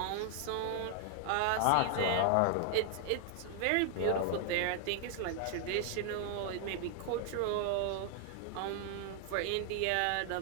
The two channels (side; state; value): both; different; correlation 0.00